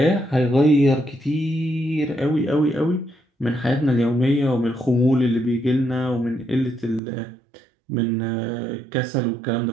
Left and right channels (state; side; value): drops out; left; at 7.0 s